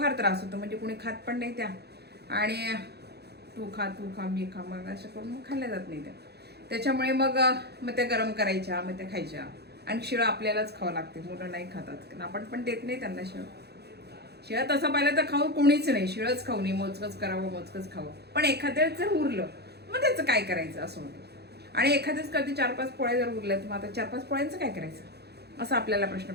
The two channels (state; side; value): late; left; 0.48 ms